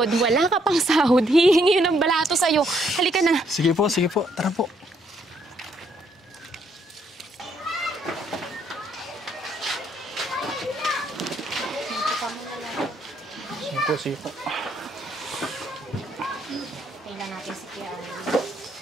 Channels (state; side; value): normal; both; correlation 0.71